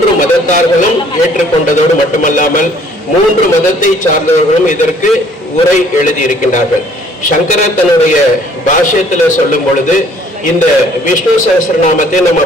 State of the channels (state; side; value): normal; both; correlation 0.59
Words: மதத்தார்களும் ஏற்றுக்கொண்டதோடு மட்டுமல்லாமல் 3 மதத்தை சார்ந்தவர்களும் இதற்கு உரை எழுதி இருக்கின்றார்கள். சங்கரர் தன்னுடைய பாஷ்யத்துல சொல்லும் பொழுது இந்த விஷ்ணு சகஸ்ரநாமத்தை நம்ம